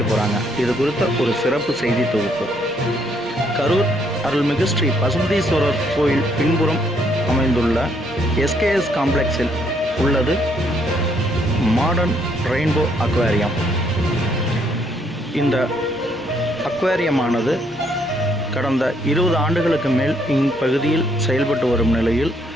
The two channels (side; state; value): both; normal; correlation 0.70